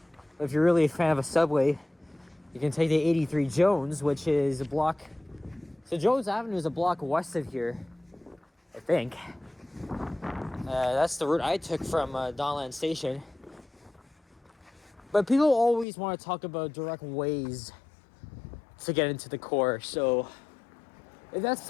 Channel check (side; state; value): right; drops out; at 15.9 s